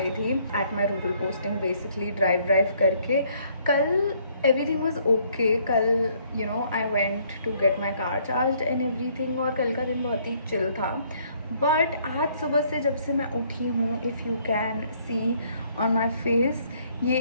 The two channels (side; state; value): both; inverted; correlation -0.65